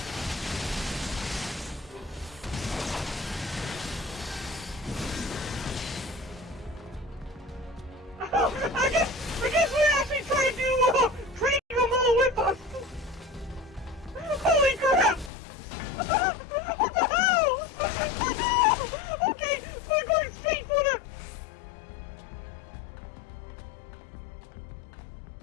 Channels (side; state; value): right; drops out; at 15.3 s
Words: Oh, God! I guess we're actually trying to trade them all with us. Holy crap! What the hell? Okay, we're going straight for the...